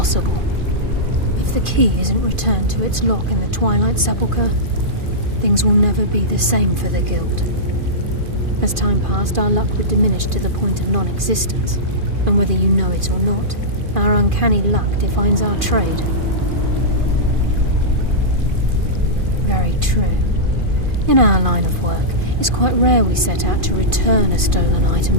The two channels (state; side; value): late; left; 2.5 ms